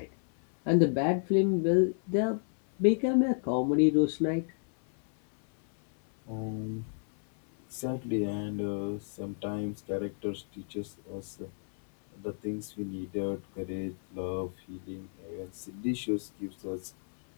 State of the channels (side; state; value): right; silent; 57 dB below the other